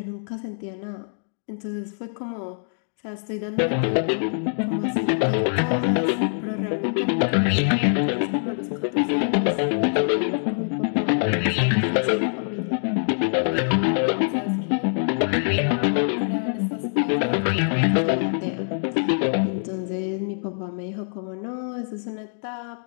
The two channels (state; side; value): silent; right; digital silence